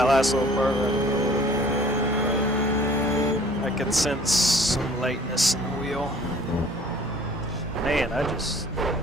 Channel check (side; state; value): both; normal; correlation 0.52